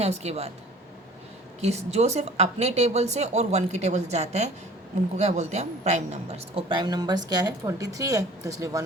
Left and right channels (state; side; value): normal; both; correlation 0.47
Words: उसके बाद, कि जो सिर्फ अपने टेबल से और 1 के टेबल से जाता है, उनको क्या बोलते हैं हम, प्राइम नंबर्स। और प्राइम नंबर्स क्या है, 23 है, तो इसलिए